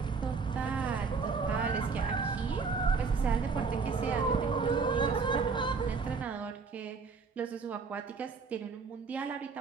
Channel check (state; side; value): quieter; left; 4.9 dB